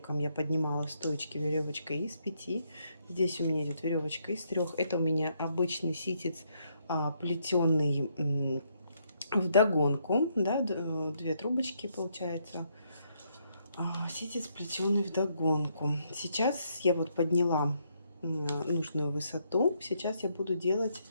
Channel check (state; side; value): inverted; both; correlation -0.74